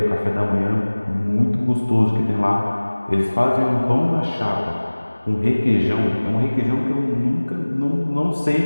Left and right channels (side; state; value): both; inverted; correlation -1.00